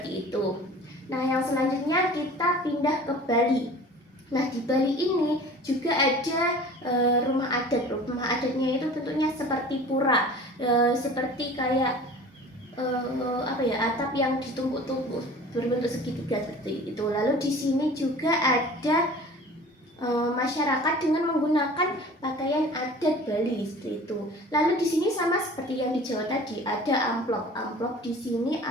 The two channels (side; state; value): both; normal; correlation 0.43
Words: itu. Nah, yang selanjutnya kita pindah ke Bali. Nah, di Bali ini juga ada rumah adat. Rumah adatnya itu bentuknya seperti pura, seperti kayak atap yang ditumpuk-tumpuk berbentuk segitiga seperti itu. Lalu di sini juga ada masyarakat dengan menggunakan pakaian adat Bali seperti itu. Lalu di sini sama seperti yang di Jawa tadi, ada amplop. Amplop di sini